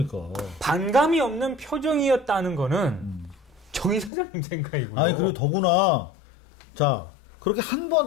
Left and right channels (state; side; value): drops out; right; at 4.1 s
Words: 반감이 없는 표정이었다는 거는 정 이사장님 생각이고요. 아니 그리고 더구나 자 그렇게 한